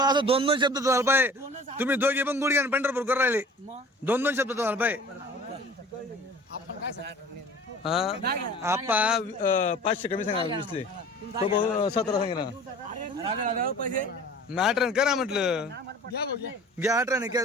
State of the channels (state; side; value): normal; both; correlation 0.45